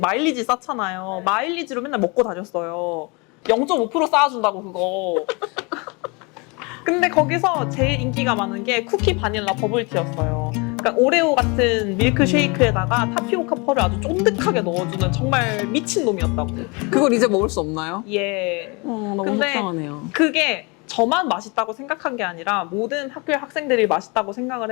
쌓잖아요. 마일리지로 맨날 먹고 다녔어요. 0.5% 쌓아준다고 그거. 근데 거기서 제일 인기가 많은 게 쿠키 바닐라 버블티였어요. 그러니까 오레오 같은 밀크쉐이크에다가 타피오카 펄을 아주 쫀득하게 넣어주는 정말 미친 놈이었다고. 그걸 이제 먹을 수 없나요? 예. 너무 근데 속상하네요. 그게 저만 맛있다고 생각한 게 아니라 모든 학교의 학생들이 맛있다고 생각을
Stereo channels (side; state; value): right; quieter; 29.2 dB